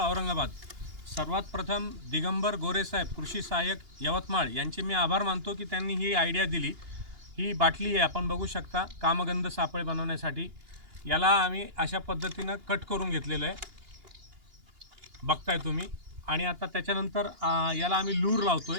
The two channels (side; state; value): left; late; 2.8 ms